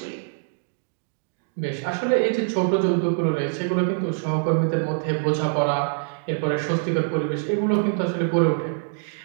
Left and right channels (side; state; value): left; silent; digital silence